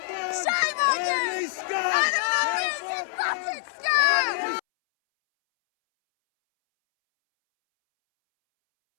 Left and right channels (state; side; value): silent; right; 62 dB below the other